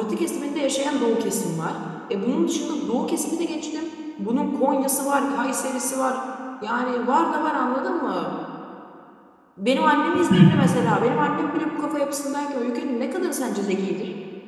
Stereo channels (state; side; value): identical; both; correlation 1.00